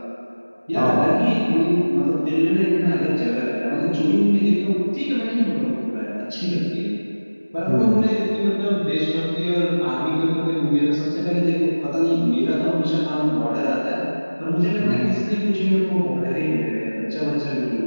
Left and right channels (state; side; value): inverted; both; correlation -1.00